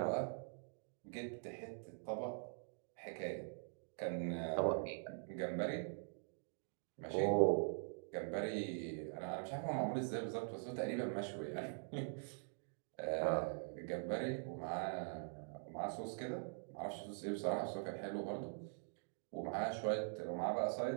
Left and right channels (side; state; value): left; silent; digital silence